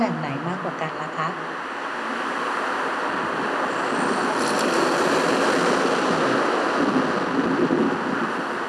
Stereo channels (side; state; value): both; identical; correlation 1.00